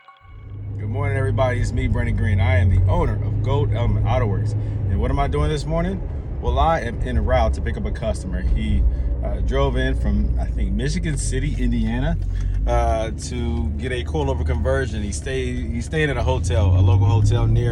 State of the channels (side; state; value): both; identical; correlation 1.00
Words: morning, everybody. It's me, Brandon Green. I am the owner of Gold Element Autoworks. And what am I doing this morning? Well, I am en route to pick up a customer. He drove in from, I think, Michigan City, Indiana, to get a coilover conversion. He stayed at a hotel, a local hotel